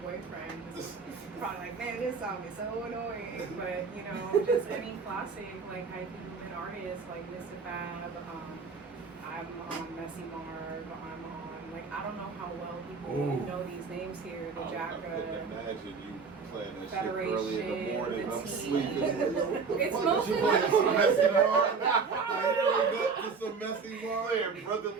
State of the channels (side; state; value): left; quieter; 5.1 dB